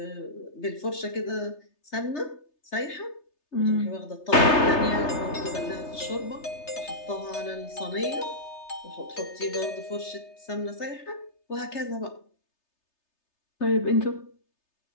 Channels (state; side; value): late; right; 3.3 ms